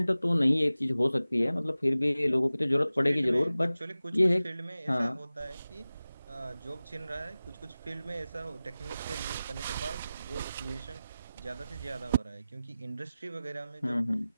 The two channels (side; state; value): both; inverted; correlation -0.96